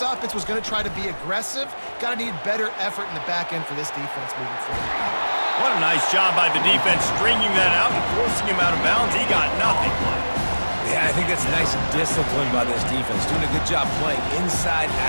offense was going to try to be aggressive. Got to need better effort in the back end for this defense moving forward. What a nice job by the defense stringing that out and forcing him out of bounds. He got nothing. Yeah, I think that's nice discipline by this defense. Doing a good job playing inside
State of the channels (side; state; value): both; inverted; correlation -1.00